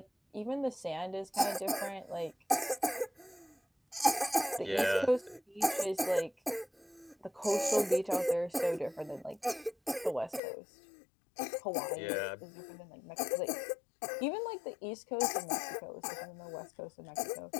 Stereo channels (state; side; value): drops out; right; at 10.4 s